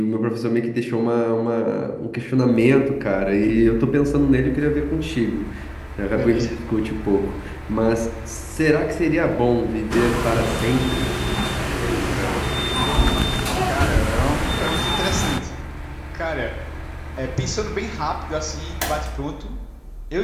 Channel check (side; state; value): both; identical; correlation 1.00